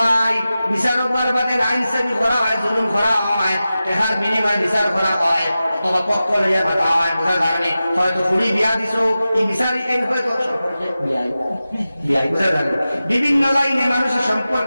বিচারক বাদে আইন সেবি করা হয়, জুলুম করা হয়, টাকার বিনিময়ে বিচার করা হয়, অথবা পক্ষ লইয়া ভাতা হয়, বোঝা যায়নি। হয়তো ফুড়ি বিয়া দিছো, এই বিচারি এই হয়তো সম্পর্কে বিয়াই, বোঝা যায়। বিভিন্ন লাইনে মানুষের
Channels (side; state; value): both; inverted; correlation -0.94